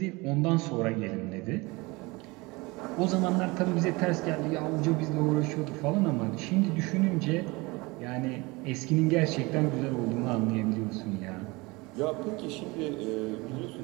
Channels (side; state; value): left; quieter; 24.2 dB